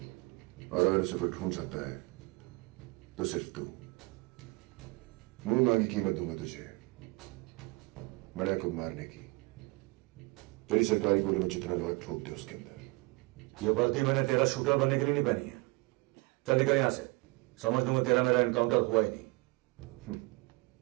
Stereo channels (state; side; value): quieter; left; 25.6 dB